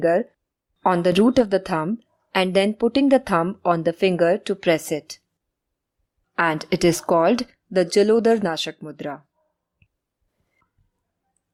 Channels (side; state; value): both; identical; correlation 1.00